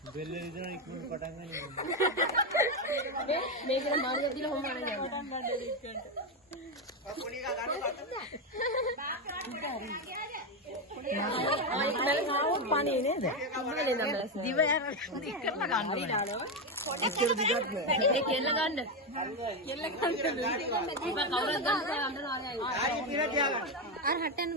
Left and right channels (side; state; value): both; normal; correlation 0.09